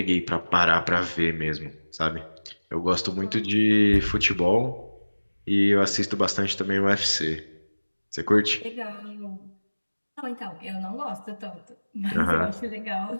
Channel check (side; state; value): both; inverted; correlation -1.00